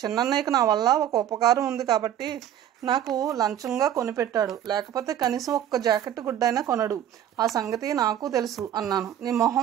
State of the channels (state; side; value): quieter; left; 10.7 dB